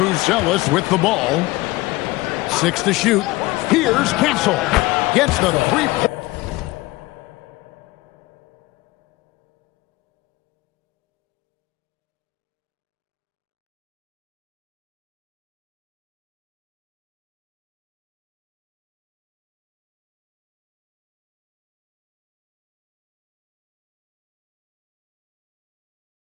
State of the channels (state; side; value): quieter; right; 20.1 dB